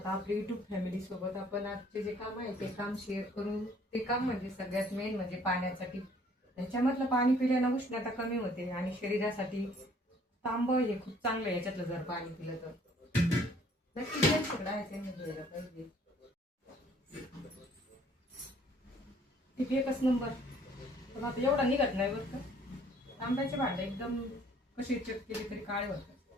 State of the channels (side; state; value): both; normal; correlation 0.59